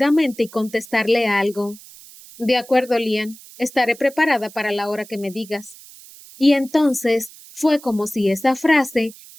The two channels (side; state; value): right; noise; hiss, 20 dB below the sound